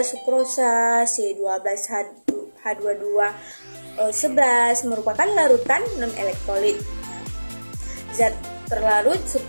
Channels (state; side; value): inverted; both; correlation -1.00